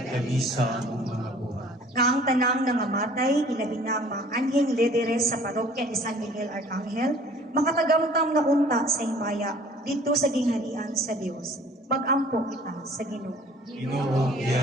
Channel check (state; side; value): normal; both; correlation 0.52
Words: kami sa among mga buhat. Nga ang tanang nangamatay, ilabi na ang mga anhing lideres sa parokya ni San Miguel Arcangel, makatagamtam na unta sa himaya dito sa gingharian sa Dios. Mag-ampo kita sa Ginoo. Ginoo,